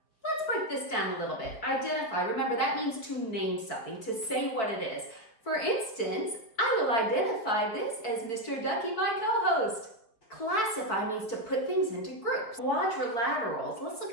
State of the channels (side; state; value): right; late; 4.9 ms